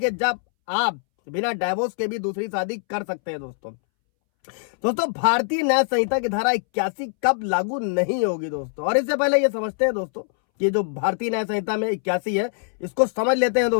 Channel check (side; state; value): right; silent; 63 dB below the other